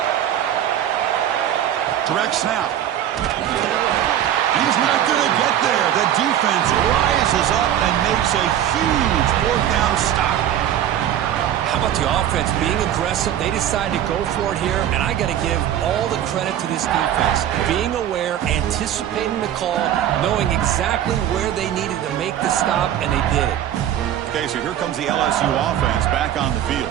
Direct snap. He's not going to get there. The defense rises up and makes a huge fourth down stop. How about the offense being aggressive? They decide to go for it here, and I got to give all the credit to this defense. Being aware, anticipating the call, knowing exactly where they needed to make the stop, and they did it. Okay, so here comes the LSU offense back on the field.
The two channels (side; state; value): left; quieter; 10.9 dB